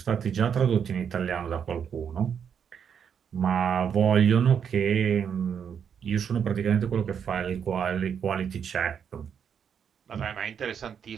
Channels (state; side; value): quieter; left; 7.6 dB